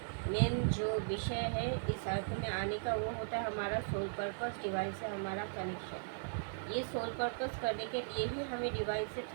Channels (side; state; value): left; silent; digital silence